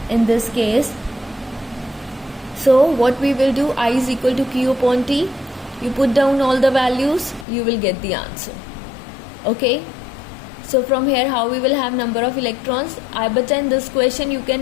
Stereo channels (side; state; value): right; drops out; at 7.5 s